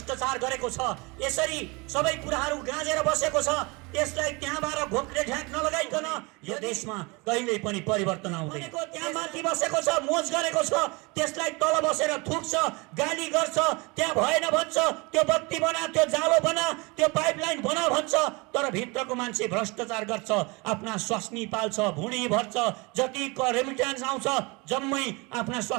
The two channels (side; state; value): left; quieter; 26.8 dB